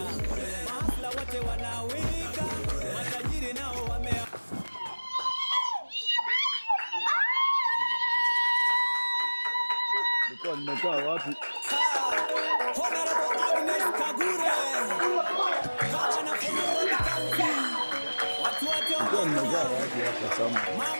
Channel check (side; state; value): both; inverted; correlation -1.00